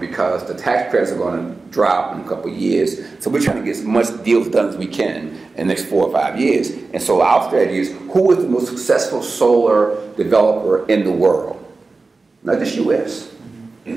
the tax credits are going to drop in a couple of years. So we're trying to get as much deals done as we can in the next 4 or 5 years. And so our strategy is, who is the most successful solar developer in the world? Not just U.S.,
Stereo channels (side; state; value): left; quieter; 3.8 dB